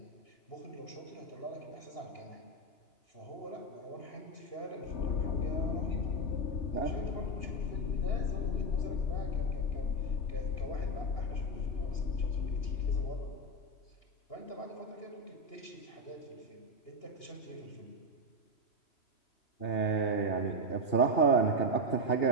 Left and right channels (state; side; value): late; right; 2.8 ms